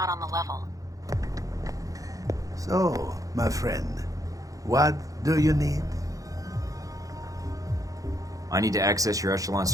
on the level. So, my friend, what do you need? I need to access your Echelon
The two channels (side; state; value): left; late; 0.17 ms